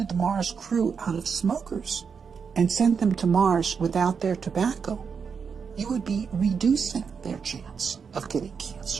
the Mars crew out of smokers and sent them to Mars without their tobacco, you would be reducing their chance of getting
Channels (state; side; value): quieter; left; 6.1 dB